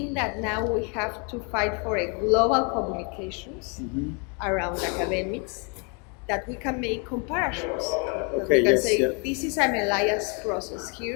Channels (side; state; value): right; quieter; 35.6 dB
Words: that now we have to fight for a global communications around academics, that we can make comparisons. That Okay, we can yes, say, yeah. this is an Elias process